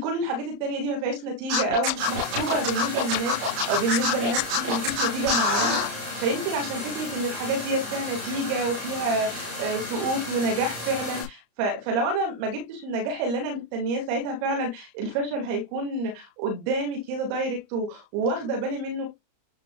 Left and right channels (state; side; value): late; left; 34 ms